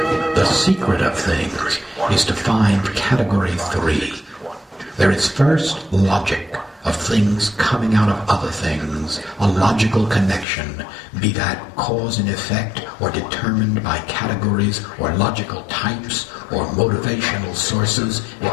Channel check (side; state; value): right; drops out; at 10.5 s